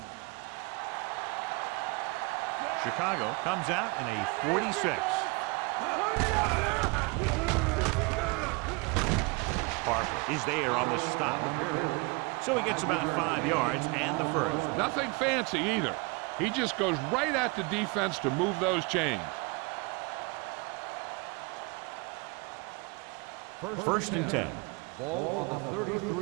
Chicago comes out in a 46. Harper is there on the stop. So he gets about 5 yards and the first. Nothing fancy either. He just goes right at the defense to move those chains. First and 10. Ball on the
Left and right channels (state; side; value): quieter; left; 28.2 dB